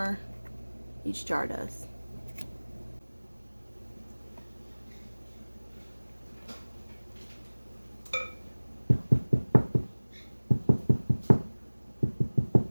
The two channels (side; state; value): both; inverted; correlation -1.00